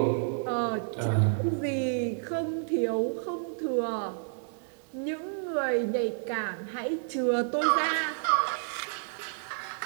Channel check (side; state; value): left; silent; digital silence